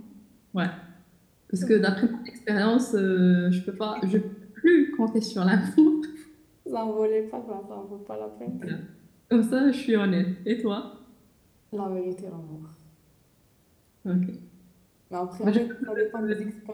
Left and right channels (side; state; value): both; identical; correlation 1.00